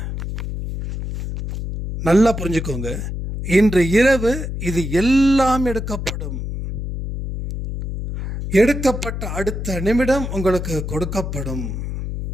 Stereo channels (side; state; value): left; noise; hum, 5 dB below the sound